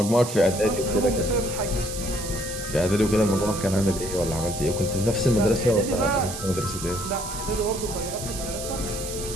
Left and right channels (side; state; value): right; noise; hiss, 8 dB below the sound